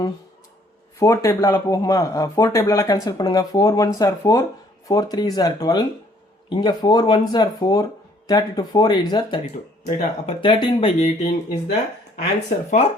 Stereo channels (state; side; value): normal; both; correlation 0.62